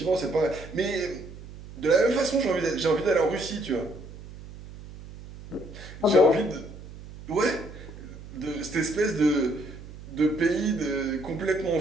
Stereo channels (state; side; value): noise; right; hum, 15 dB below the sound